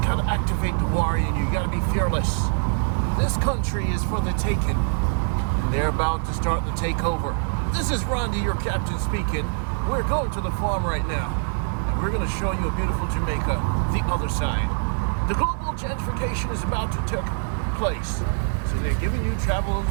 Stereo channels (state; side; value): silent; left; digital silence